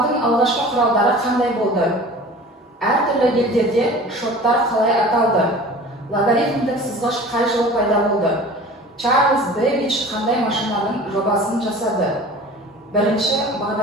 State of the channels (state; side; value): normal; both; correlation 0.41